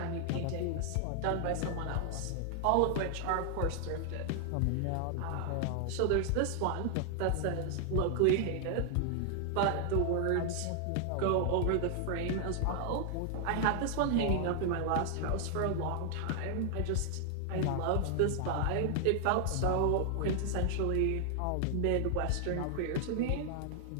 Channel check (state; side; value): different; both; correlation 0.00